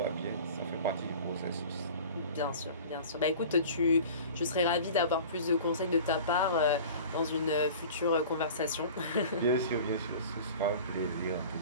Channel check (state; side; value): inverted; both; correlation -0.40